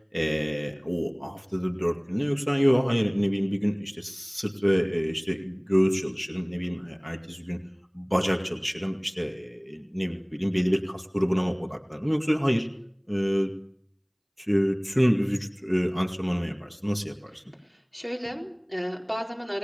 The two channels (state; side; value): identical; both; correlation 1.00